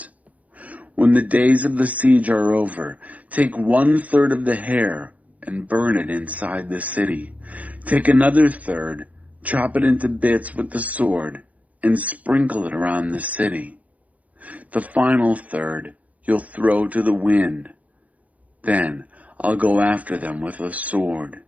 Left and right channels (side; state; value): left; late; 0.070 ms